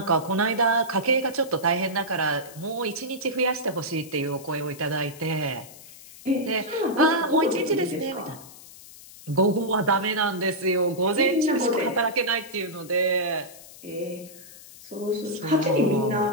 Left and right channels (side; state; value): left; noise; hiss, 19 dB below the sound